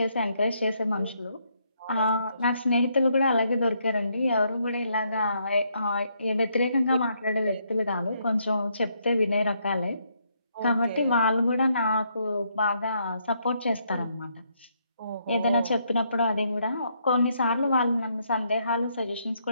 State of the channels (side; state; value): both; inverted; correlation -0.74